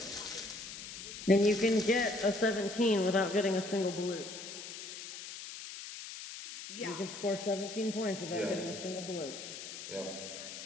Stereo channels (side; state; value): left; noise; hiss, 10 dB below the sound